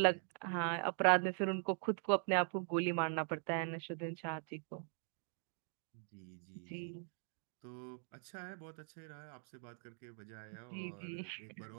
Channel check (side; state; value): left; silent; 50 dB below the other